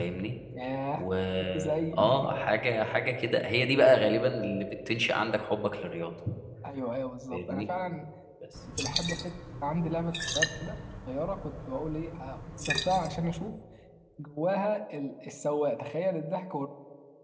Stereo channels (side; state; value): both; identical; correlation 1.00